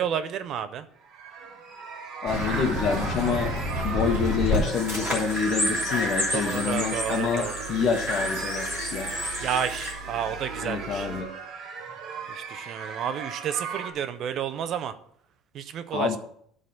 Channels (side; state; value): both; normal; correlation 0.47